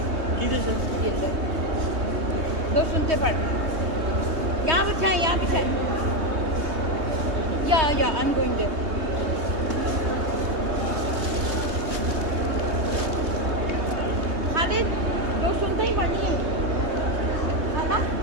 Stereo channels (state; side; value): late; left; 3.2 ms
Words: किधर से? ये लो, 2 सुनते पढ़। यहाँ बिछाएं। या I am going there. Khalid 2 सुनते ही पढ़नी है ना?